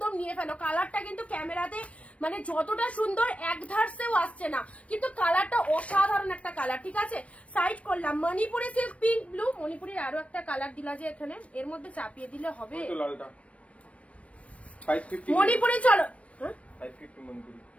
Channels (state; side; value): late; right; 0.064 ms